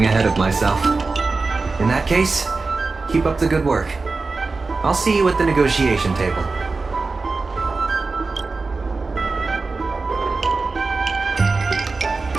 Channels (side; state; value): left; quieter; 3.9 dB